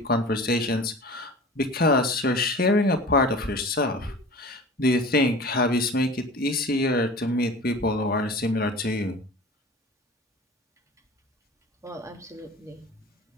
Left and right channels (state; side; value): normal; both; correlation 0.38